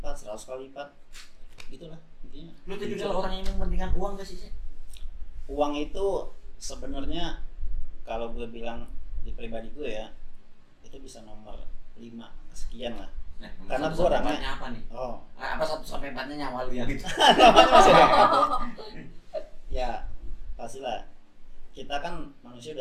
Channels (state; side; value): identical; both; correlation 1.00